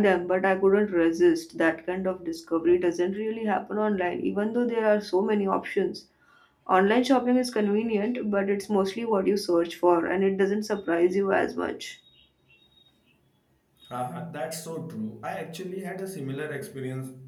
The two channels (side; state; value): both; identical; correlation 1.00